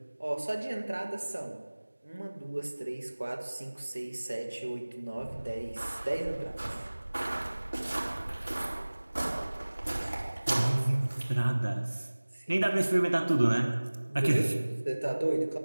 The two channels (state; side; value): inverted; both; correlation -1.00